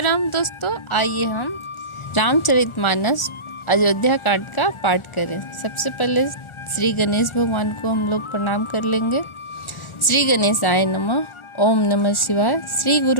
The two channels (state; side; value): late; right; 1.4 ms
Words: दोस्तों, आइए हम रामचरितमानस अयोध्या कांड का पाठ करें। सबसे पहले श्री गणेश भगवान को हम लोग प्रणाम कर लेंगे। श्री गणेशाय नमः। ओम नमः शिवाय। श्री